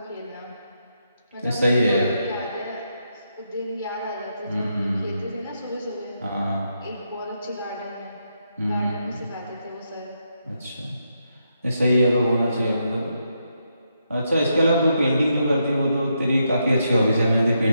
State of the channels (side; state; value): both; inverted; correlation -0.81